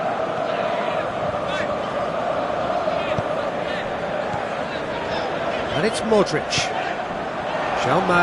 And it's Modric. João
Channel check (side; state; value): both; identical; correlation 1.00